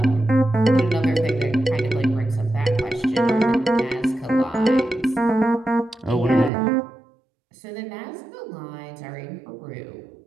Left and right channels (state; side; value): drops out; left; at 6.5 s